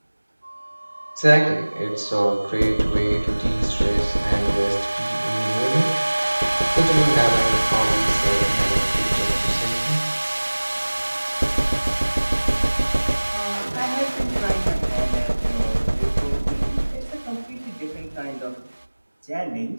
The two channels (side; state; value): both; inverted; correlation -1.00